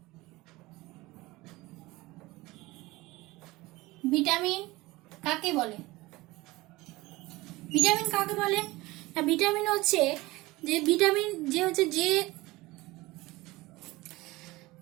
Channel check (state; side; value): quieter; left; 20.4 dB